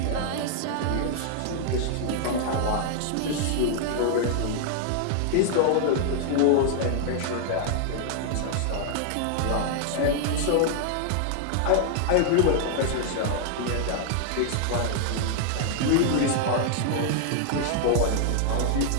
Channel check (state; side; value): different; both; correlation 0.00